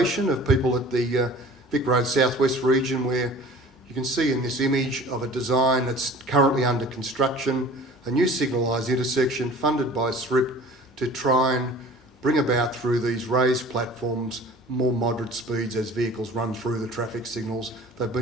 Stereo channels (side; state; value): both; normal; correlation 0.45